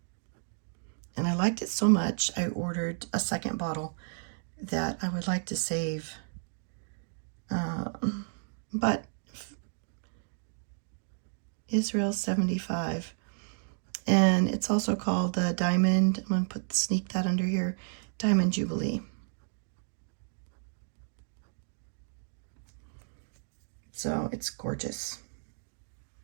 I liked it so much, I ordered a second bottle that I would like to save. But Israel 75. And it's also called the Diamond, I'm going to sneak that under here, Diamond Jubilee. So it's gorgeous.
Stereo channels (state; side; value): silent; left; digital silence